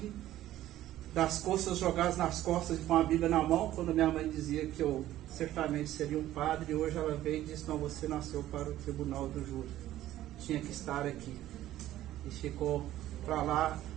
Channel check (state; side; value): quieter; left; 13.9 dB